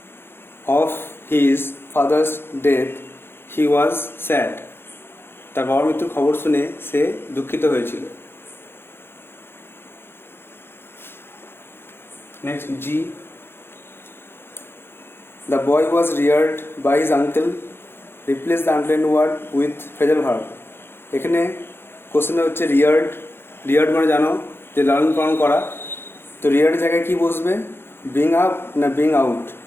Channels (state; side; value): late; right; 0.11 ms